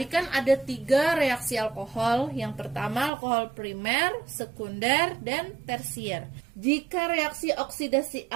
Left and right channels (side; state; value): left; drops out; at 3.1 s